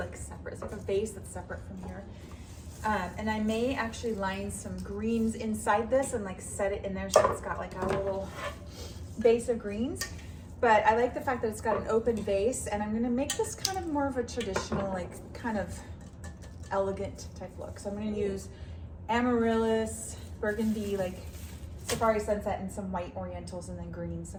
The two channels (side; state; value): both; identical; correlation 1.00